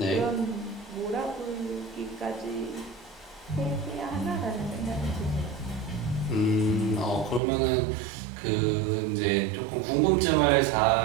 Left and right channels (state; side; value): drops out; left; at 7.4 s